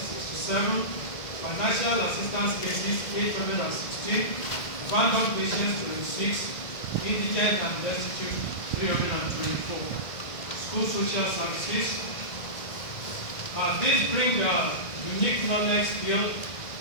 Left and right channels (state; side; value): late; right; 1.9 ms